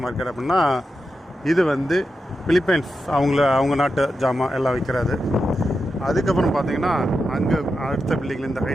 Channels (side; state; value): both; normal; correlation 0.89